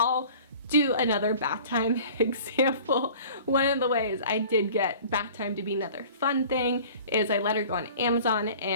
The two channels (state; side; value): inverted; both; correlation -0.45